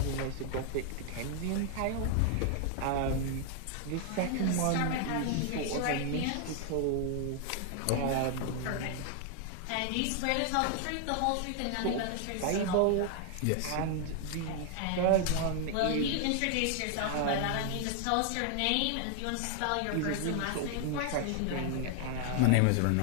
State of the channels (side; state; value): both; different; correlation 0.00